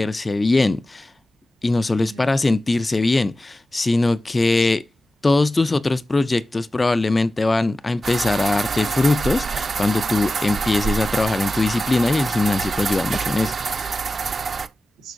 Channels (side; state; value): both; normal; correlation 0.94